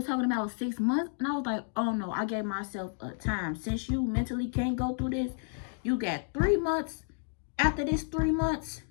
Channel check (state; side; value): silent; right; 57 dB below the other